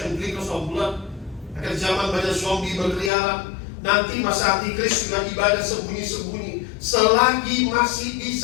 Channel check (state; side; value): drops out; right; at 3.1 s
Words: and drinkers of blood. Akan zaman banyak zombie berkeliaran. Nanti masa antikris sudah ibadah sembunyi-sembunyi. Selagi masih